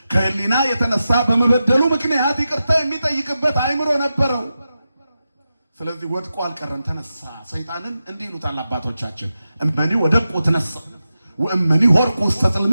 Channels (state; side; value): inverted; both; correlation -0.91